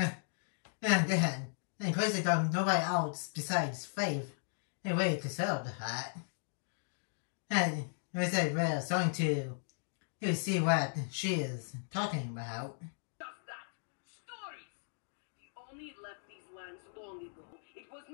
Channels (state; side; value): silent; right; digital silence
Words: And crazy that nobody else besides Faith really considered that. And I say we're starting to see what she is talking about. Just that. Stories. He only left these lands long ago. It was